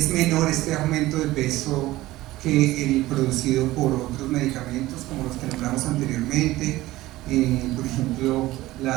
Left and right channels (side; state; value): left; quieter; 17.3 dB